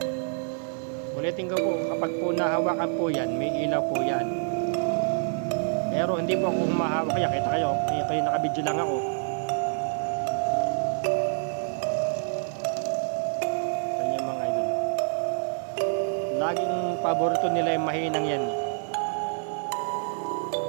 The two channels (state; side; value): silent; left; 56 dB below the other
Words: Ulitin ko po, kapag po nahawakan po yan, may ilaw po yan. Pero hindi po ako mahawak kaya, kita kayo, kayo nakabidyo lang ako. Laging paborito nila yung mahinang yan.